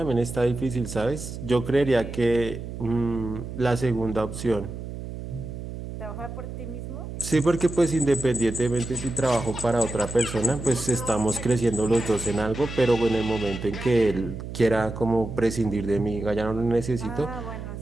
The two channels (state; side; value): noise; right; hum, 9 dB below the sound